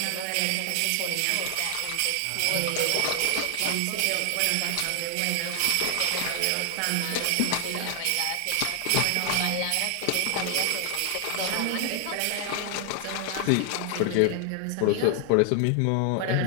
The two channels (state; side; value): different; both; correlation 0.00